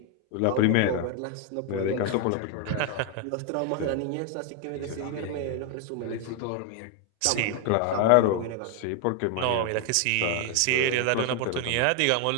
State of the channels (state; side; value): different; both; correlation 0.01